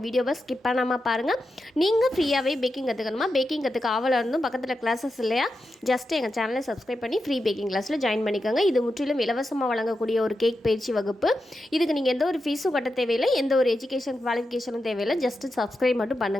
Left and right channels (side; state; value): both; normal; correlation 0.89